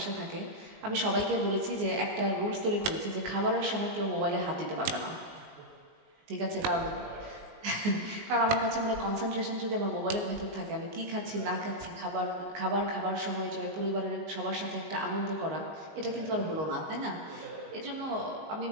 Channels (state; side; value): late; left; 19 ms